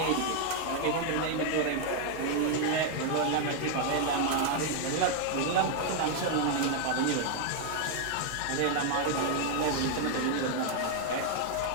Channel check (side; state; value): both; different; correlation 0.00